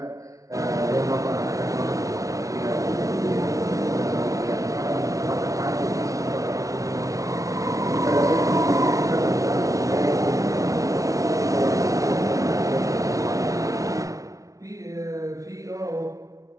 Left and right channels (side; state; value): left; late; 0.16 ms